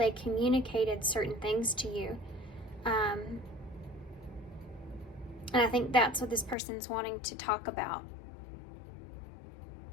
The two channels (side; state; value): right; drops out; at 6.6 s